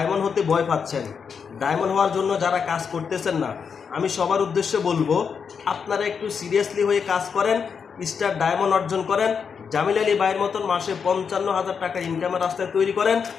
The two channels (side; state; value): right; quieter; 6.3 dB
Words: হতে ভয় পাচ্ছেন, ডায়মন্ড হওয়ার জন্য যারা কাজ করতেছেন না, আমি সবার উদ্দেশ্যে বলবো আপনারা একটু সিরিয়াসলি হয়ে কাজ করেন, স্টার ডায়মন্ড অর্জন করেন, জামিল আলী ভাইয়ের মতন মাসে 55,000 টাকা ইনকামের রাস্তায় তৈরি করেন।